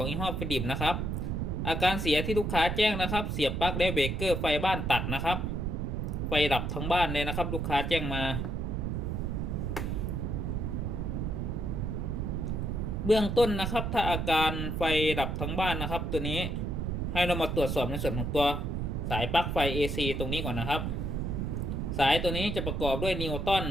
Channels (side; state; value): right; noise; rumble, 1 dB below the sound